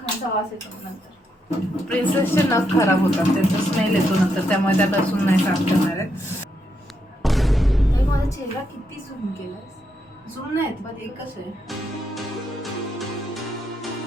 वास येतो नंतर. प्रिन्सेसचे नख खराब होतात, त्यांचा स्मेल येतो नंतर, त्यामुळे त्या लसूण नाही साफ करणार आहेत. माझा चेहरा किती झूम केलास? झूम नाहीत पण एकच आहे.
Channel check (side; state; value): both; normal; correlation 0.80